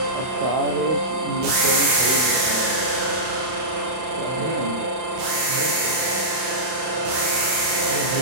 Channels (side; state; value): left; late; 31 ms